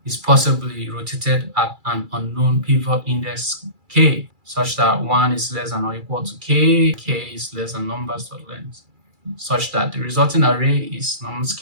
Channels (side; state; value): left; late; 2.3 ms